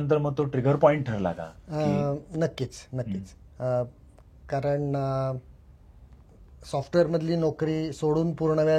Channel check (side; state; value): both; identical; correlation 1.00